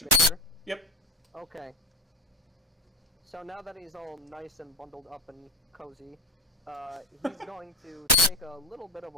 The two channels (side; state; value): both; normal; correlation 0.21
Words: Major? Yep. Okay. So now that he's all nice and bundled up and cozy, he's going to take a little bit of